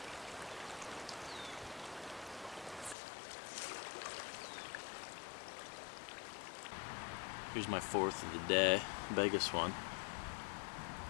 Here's my fourth of the day, biggest one.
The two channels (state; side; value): drops out; right; at 3.0 s